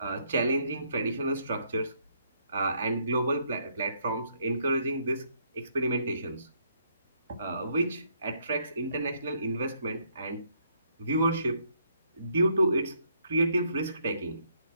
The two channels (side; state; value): both; inverted; correlation -0.71